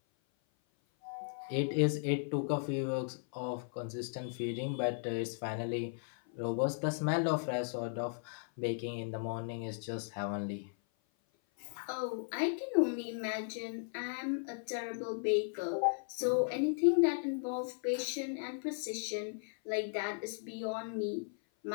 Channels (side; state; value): right; silent; 54 dB below the other